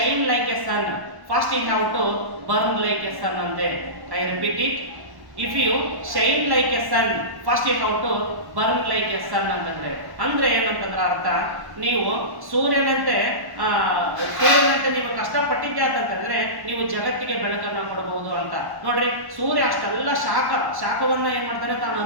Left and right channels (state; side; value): late; left; 1.1 ms